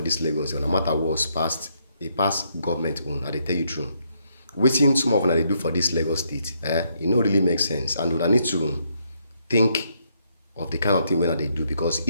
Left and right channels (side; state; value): both; inverted; correlation -0.74